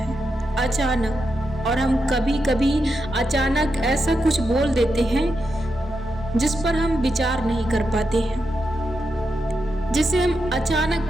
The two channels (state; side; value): normal; both; correlation 0.86